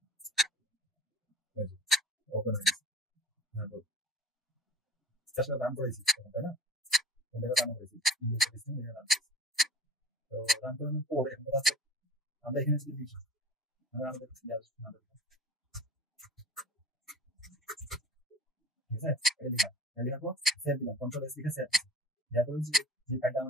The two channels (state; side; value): normal; both; correlation 0.41